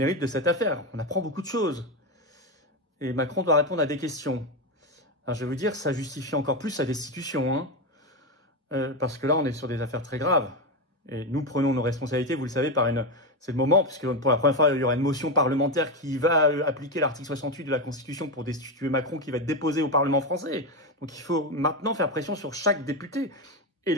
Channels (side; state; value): both; normal; correlation 0.12